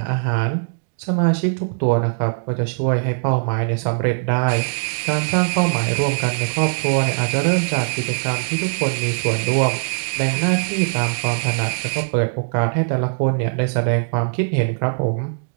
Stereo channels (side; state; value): left; silent; digital silence